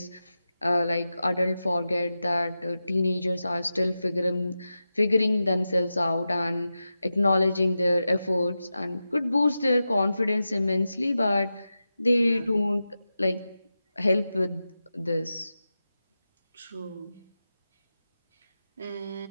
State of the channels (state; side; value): inverted; both; correlation -0.92